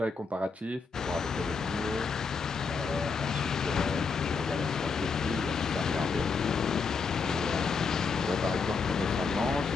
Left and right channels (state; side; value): quieter; right; 4.9 dB